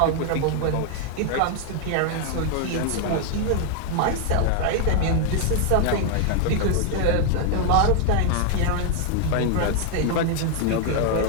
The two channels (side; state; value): both; different; correlation 0.00